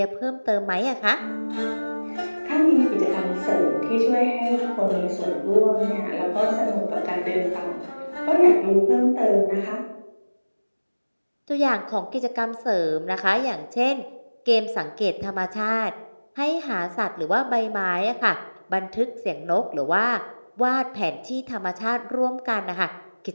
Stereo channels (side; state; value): both; inverted; correlation -1.00